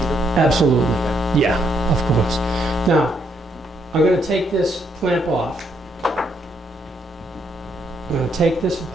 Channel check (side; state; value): both; normal; correlation 0.74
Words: Absolutely. Yeah, of course. Now, I'm going to take this clamp off. I'm going to take this